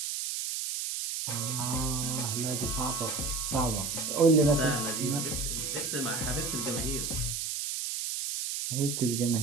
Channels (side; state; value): right; noise; hiss, 2 dB below the sound